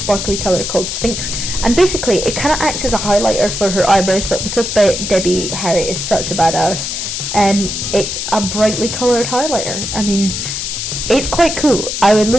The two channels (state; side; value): noise; left; hiss, 4 dB below the sound